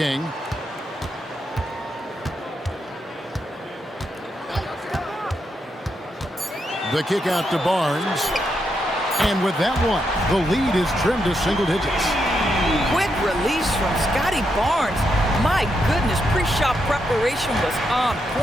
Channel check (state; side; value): normal; both; correlation 0.82